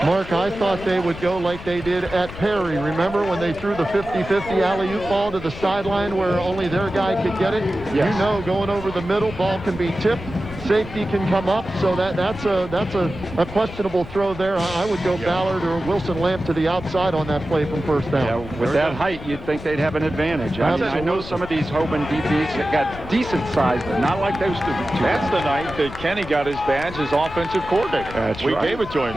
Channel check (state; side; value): noise; left; rumble, 13 dB below the sound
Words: Mark, I thought they would go like they did at Perry. Remember when they threw the 50-50 alley-oop ball to the sideline where only their guy could get it? Yes. You know, going over the middle, ball can be tipped. safety can come up, so that's a questionable throw there. I would go Ballard or Wilson Lamp to the outside on that play from first down. Yeah, with that height, you'd think they'd have an advantage. I know some of these Hoban DBs that got decent size, but not like those two. That's the night that Kenny got his badge as offensive coordinator. That's we right. gave it to